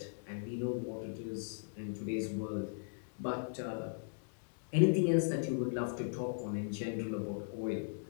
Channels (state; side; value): silent; right; digital silence